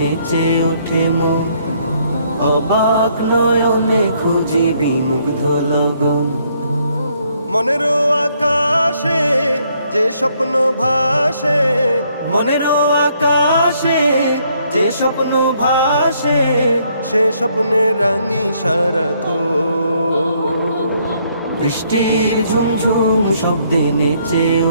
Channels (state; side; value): inverted; both; correlation -0.69